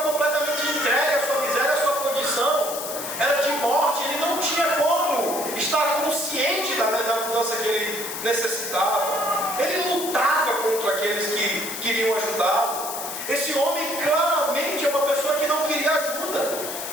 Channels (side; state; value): left; noise; hiss, 7 dB below the sound